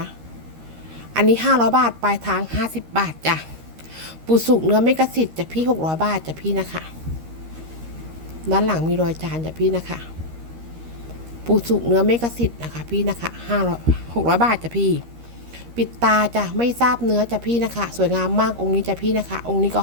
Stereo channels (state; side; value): late; left; 13 ms